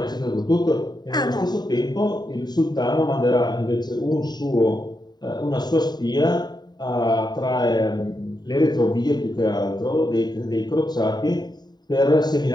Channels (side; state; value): right; late; 0.20 ms